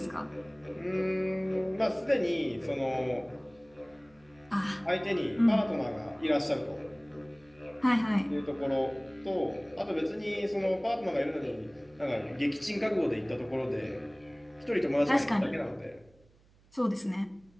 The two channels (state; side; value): noise; right; hum, 30 dB below the sound